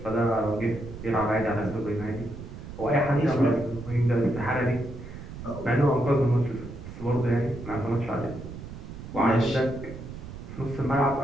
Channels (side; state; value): right; noise; rumble, 12 dB below the sound